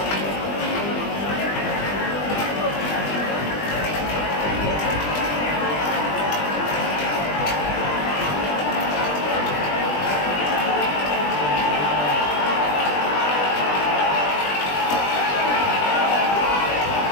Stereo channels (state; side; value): late; right; 20 ms